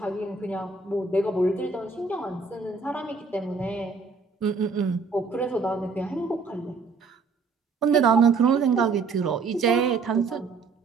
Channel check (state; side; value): quieter; left; 4.6 dB